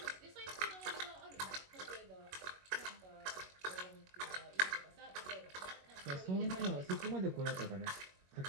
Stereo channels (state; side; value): late; left; 21 ms